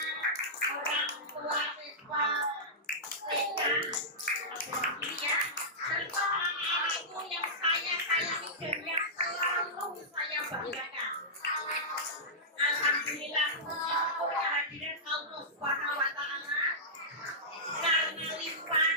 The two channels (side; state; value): both; normal; correlation -0.14